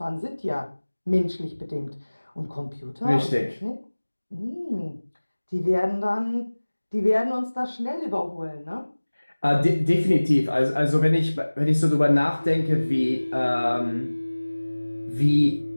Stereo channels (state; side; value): inverted; both; correlation -1.00